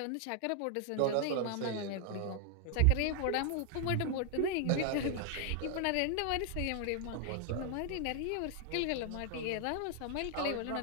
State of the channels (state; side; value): different; both; correlation 0.00